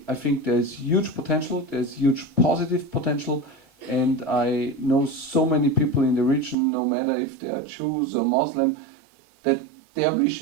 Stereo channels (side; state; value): left; drops out; at 6.6 s